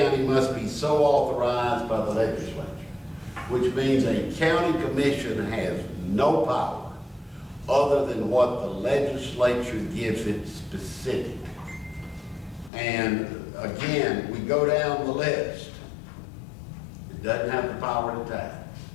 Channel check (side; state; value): right; drops out; at 12.7 s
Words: must be so authorized by the legislature, which means a county commission has no power other than what the legislature gives it specific. And again, we go down the list. It doesn't have the power to tax.